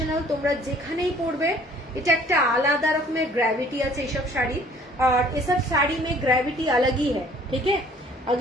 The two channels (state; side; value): normal; both; correlation 0.56